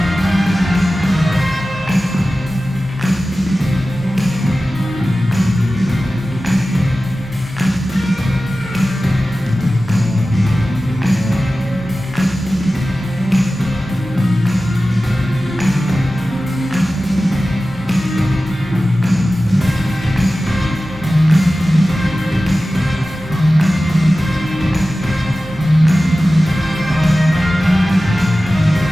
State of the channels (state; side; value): normal; both; correlation 0.95